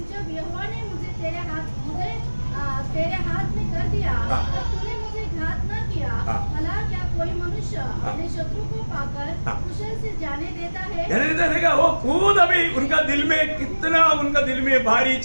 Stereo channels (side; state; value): both; inverted; correlation -1.00